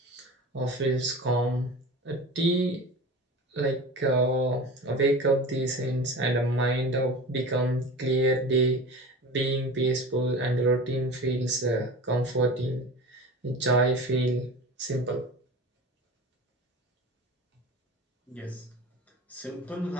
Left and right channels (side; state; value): both; normal; correlation 0.33